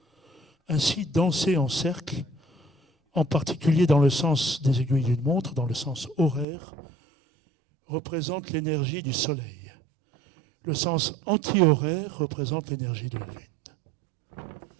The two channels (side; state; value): left; drops out; at 6.5 s